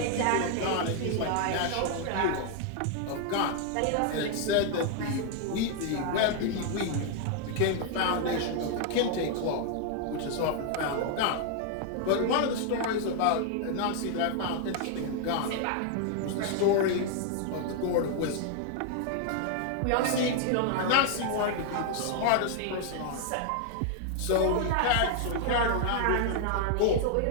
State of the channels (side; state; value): both; different; correlation 0.00